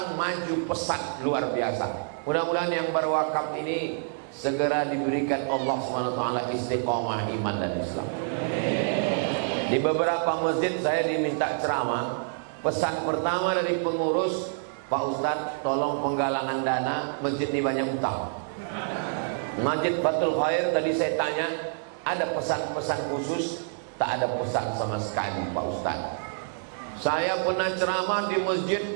maju pesat luar biasa. Mudah-mudahan yang berwakaf ini segera diberikan Allah SWT istiqomah iman dan Islam. Di beberapa masjid saya diminta ceramah. Pesan pertama dari pengurus, Pak Ustadz tolong penggalangan dana, masjid ini banyak utang. Masjid Fathul Khair tadi saya tanya, ada pesan-pesan khusus? Tak ada pesan sama sekali Pak Ustadz. Saya pernah ceramah di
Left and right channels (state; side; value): silent; left; digital silence